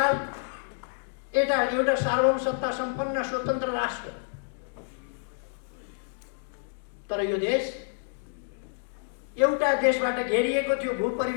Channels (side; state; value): right; silent; digital silence